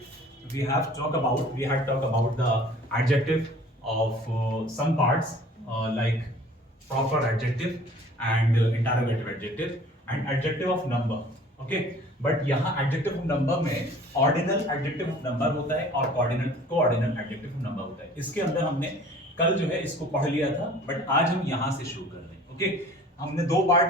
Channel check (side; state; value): both; normal; correlation 0.49